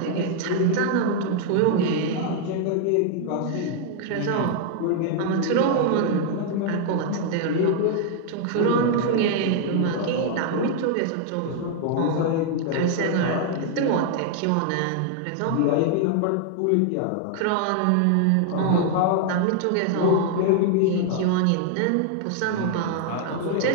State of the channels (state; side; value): different; both; correlation 0.00